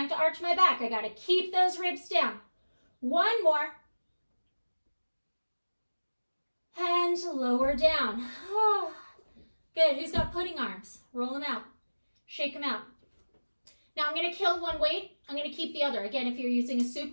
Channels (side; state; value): both; inverted; correlation -1.00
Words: to arch my back. I got to keep those ribs down. 1 more. And lower down. Oh, good. Who's got pudding arms? Roll them out. Shake them out. Now I'm going to kill one weight. I'm going to keep the other. Again, if you're using a